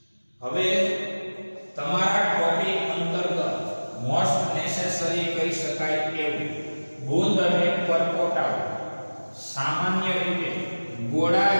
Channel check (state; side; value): inverted; both; correlation -1.00